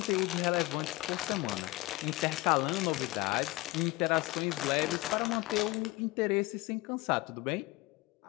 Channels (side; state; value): right; quieter; 20.6 dB